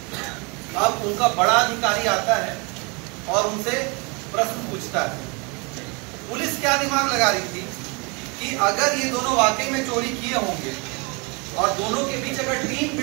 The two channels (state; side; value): quieter; left; 30.3 dB